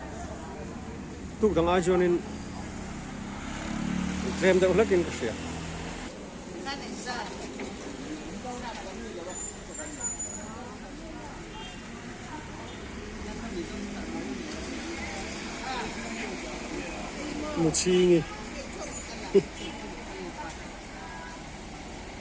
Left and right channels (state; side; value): identical; both; correlation 1.00